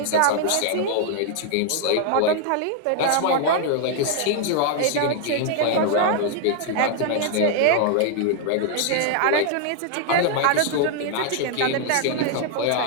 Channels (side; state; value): both; different; correlation 0.00